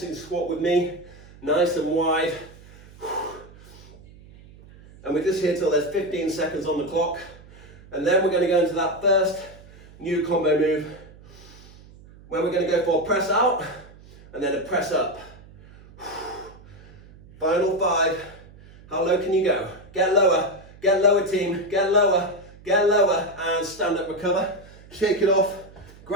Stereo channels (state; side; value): noise; right; hum, 22 dB below the sound